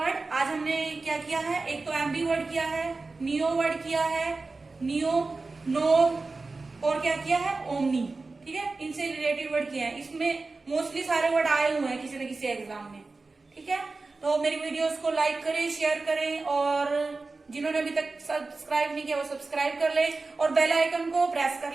आज हमने क्या किया है? एक तो एम्बी वर्ड किया है, नियो वर्ड किया है, नियो, नो, और क्या किया है? ओमनी। ठीक है, इनसे रिलेटेड वर्ड किया है। इसमें मोस्टली सारे वर्ड आए हुए हैं किसी न किसी एग्जाम में। ठीक है, तो मेरी वीडियोस को लाइक करें, शेयर करें, और जिन्होंने अभी तक सब्सक्राइब नहीं किया वो सब्सक्राइब कर ले, और बेल आइकन को प्रेस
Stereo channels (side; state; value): left; quieter; 3.7 dB